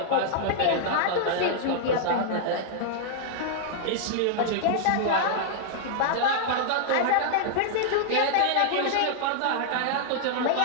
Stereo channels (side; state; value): both; different; correlation -0.01